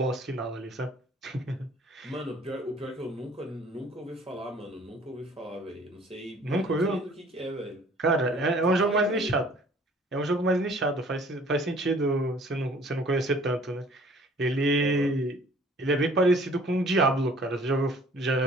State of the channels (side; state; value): both; normal; correlation 0.54